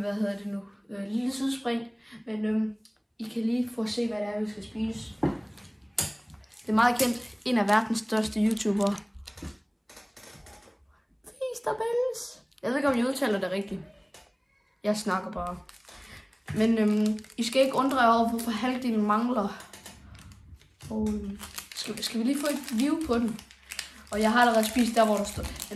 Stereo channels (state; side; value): identical; both; correlation 1.00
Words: hedder det nu? Lille sidespring, men I kan lige få at se, hvad det er, vi skal spise. Det er meget kendt, en af verdens største YouTubere. Feasterbells. Jeg ved ikke, om jeg udtaler det rigtigt. Jeg snakker bare. Men I skal ikke undre jer over, hvorfor halvdelen mangler. Og skal vi lige få et view på den? Og jeg har allerede spist der, hvor der står.